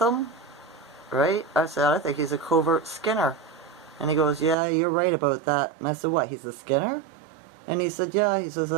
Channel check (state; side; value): drops out; left; at 4.5 s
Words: right? I said, I think he's a covert Skinner. And he goes, yeah, you're right about that. And I said, what, he's a Skinner? And he said, yeah. He says,